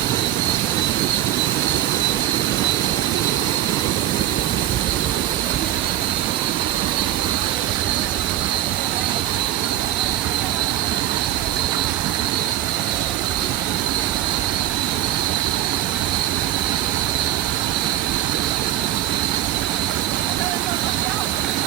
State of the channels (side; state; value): left; quieter; 12.7 dB